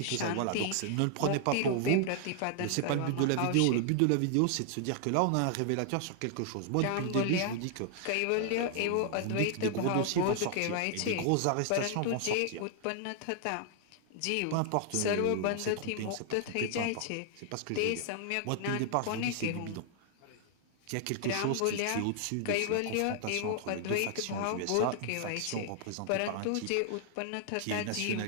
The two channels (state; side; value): different; both; correlation 0.00